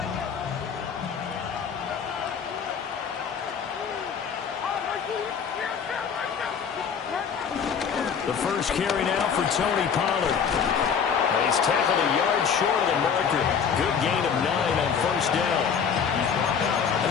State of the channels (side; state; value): right; quieter; 6.9 dB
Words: The first carry now for Tony Pollard. And he's tackled a yard short of the marker. Good gain of 9 on first down. A